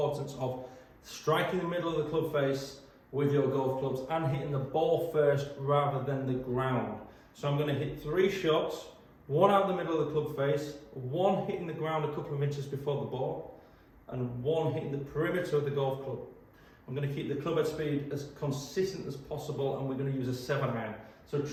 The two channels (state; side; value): identical; both; correlation 1.00